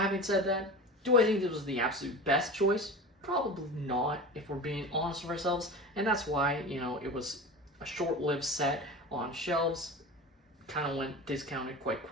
said that, do I think this was the absolute best choice? Probably not, if we're being honest with ourselves. And that's why, it was a short-lived set on shelves. Kind of went discounted quite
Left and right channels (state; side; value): normal; both; correlation 0.32